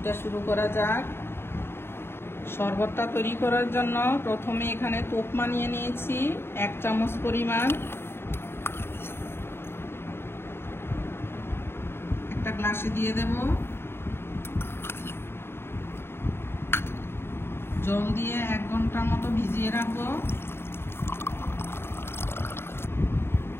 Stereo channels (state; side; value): late; right; 0.11 ms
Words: শুরু করা যাক। শরবতটা তৈরি করার জন্য প্রথমে এখানে তোকমা নিয়ে নিয়েছি 1 চামচ পরিমাণ। একটা গ্লাসে দিয়ে দেব, জল দিয়ে 1 ঘন্টার মতো ভিজিয়ে রাখবো।